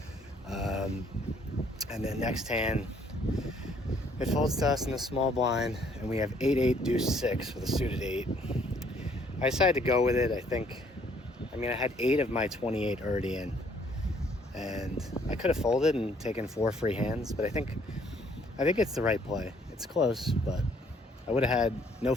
And then next hand, it folds to us in the small blind, and we have 8-8 deuce 6 with a suited 8. I decided to go with it. I had 8 of my 28 already in, and I could have folded and taken 4 free hands, but I think it's the right play. It's close, but I would have had no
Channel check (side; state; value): both; normal; correlation 0.64